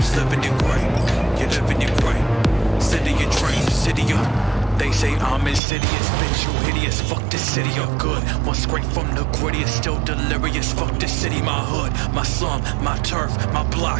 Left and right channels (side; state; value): left; drops out; at 5.6 s